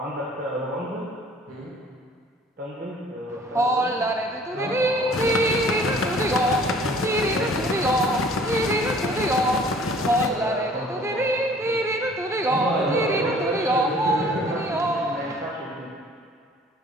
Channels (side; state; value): both; normal; correlation 0.53